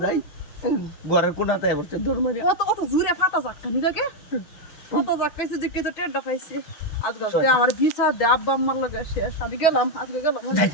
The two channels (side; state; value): right; late; 6.3 ms